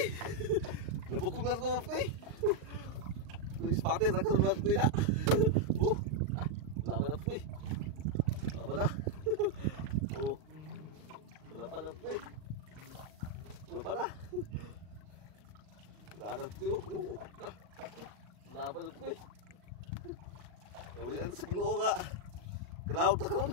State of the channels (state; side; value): late; left; 39 ms